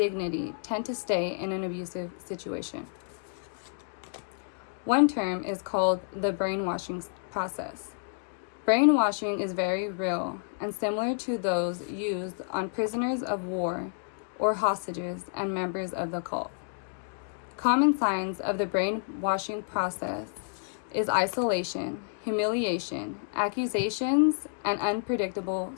tend to stay in an abusive situation. One term is called the brainwashing process. Brainwashing is very real and similar to those used on prisoners of war or hostages and members of the cult. Common signs of the brainwashing process is isolation, humiliation, accusations, and unpredictable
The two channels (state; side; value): silent; right; digital silence